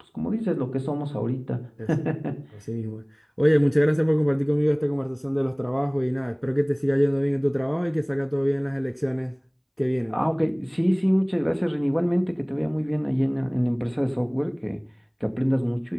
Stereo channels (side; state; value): both; identical; correlation 1.00